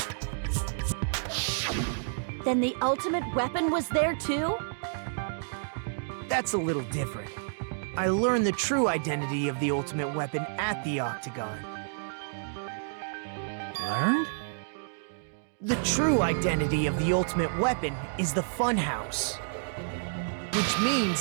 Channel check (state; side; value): silent; left; digital silence